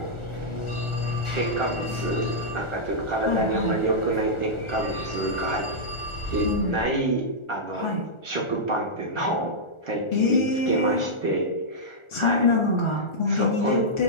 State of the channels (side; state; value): right; late; 1.4 ms